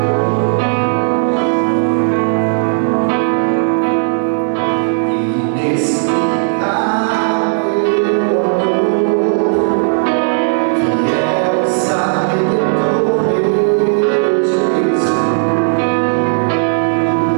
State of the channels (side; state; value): left; silent; digital silence